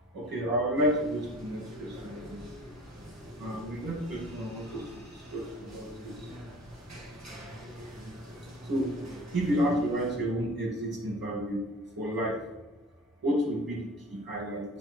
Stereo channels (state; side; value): normal; both; correlation 0.46